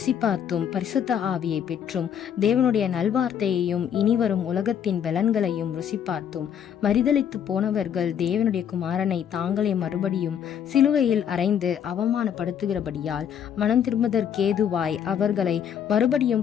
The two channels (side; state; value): right; quieter; 8.7 dB